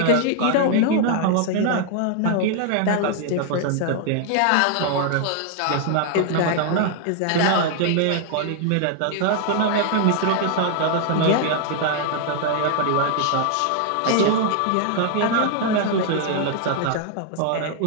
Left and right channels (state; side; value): different; both; correlation 0.00